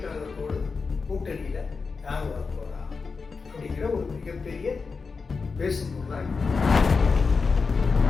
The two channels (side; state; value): right; quieter; 4.7 dB